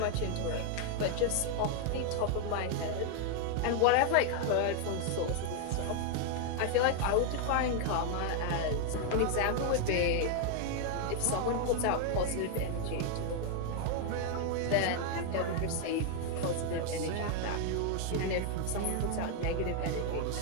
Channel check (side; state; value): both; different; correlation 0.00